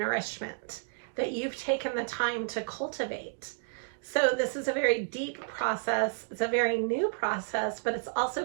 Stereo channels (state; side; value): silent; left; digital silence